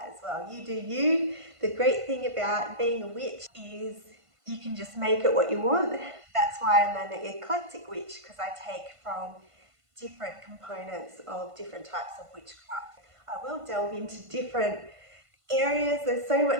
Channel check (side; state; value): left; late; 1.5 ms